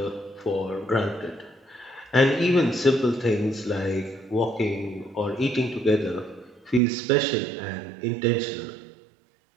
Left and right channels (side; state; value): left; drops out; at 6.8 s